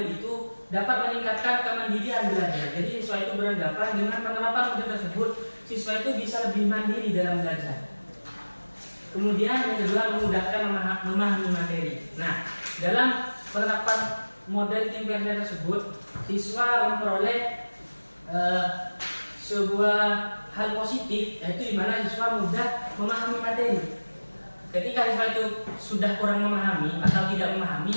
itu dapat meningkatkan kemandirian belajar. Jadi siswa itu beranggapan dengan penerapan model tersebut, siswa itu bisa lebih mandiri dalam belajar. Kemudian yang kedua, memudahkan memahami materi. Nah, dalam penerapan model think share tersebut, siswa memperoleh sebuah hal positif, yaitu di mana siswa mudah memahami materi. Ketika siswa itu sudah kurang memahami atau tidak memahami,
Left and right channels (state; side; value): inverted; both; correlation -1.00